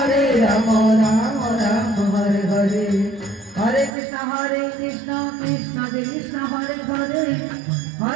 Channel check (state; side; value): drops out; left; at 3.9 s